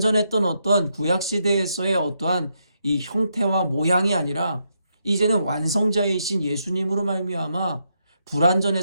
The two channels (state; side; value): inverted; both; correlation -0.80